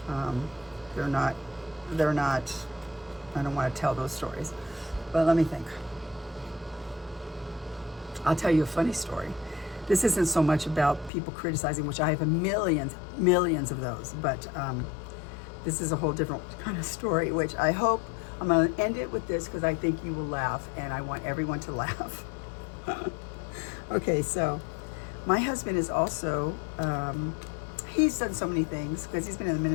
they're not, I don't want to tell those stories. But let me think. I'll tell you a funny story. This isn't so much about people criticizing, which I have millions of those, but this is a whole different kind of story, which I hope, I'm going to end it with this because I think you will laugh, and I want everyone to laugh. Okay, so my husband is also, he's done so many things because he's been in the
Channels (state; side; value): drops out; right; at 11.1 s